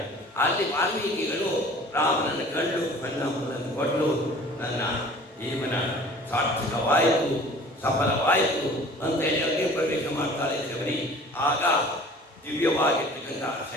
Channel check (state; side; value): normal; both; correlation 0.47